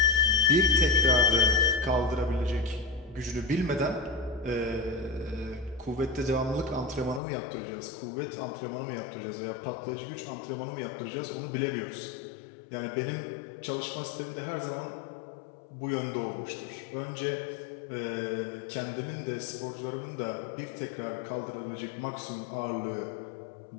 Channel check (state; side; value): drops out; right; at 7.2 s